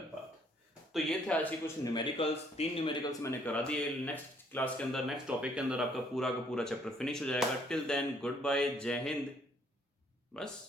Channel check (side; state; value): both; normal; correlation 0.65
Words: path. तो ये थे आज के कुछ न्यूमेरिकल्स, 3 न्यूमेरिकल्स मैंने करा दिए। नेक्स्ट क्लास के अंदर, नेक्स्ट टॉपिक के अंदर आपका पूरा का पूरा चैप्टर फिनिश हो जाएगा। टिल देन गुड बाय, जय हिंद।